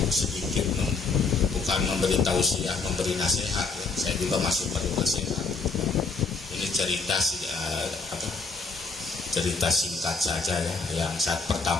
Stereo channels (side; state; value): right; quieter; 4.4 dB